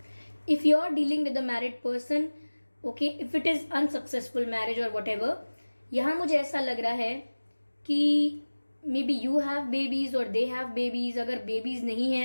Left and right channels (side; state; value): both; inverted; correlation -1.00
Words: if you are dealing with a married person, okay, if it is unsuccessful marriage or whatever, यहाँ मुझे ऐसा लग रहा है कि may be you have babies और दे हैव बेबीज। अगर बेबीज नहीं